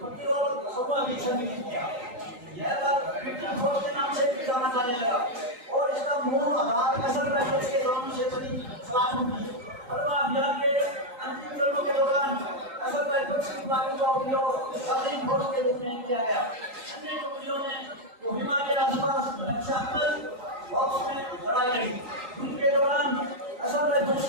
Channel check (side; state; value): left; late; 3.9 ms